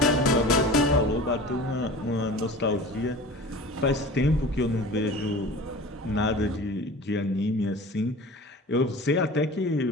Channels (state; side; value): normal; both; correlation 0.38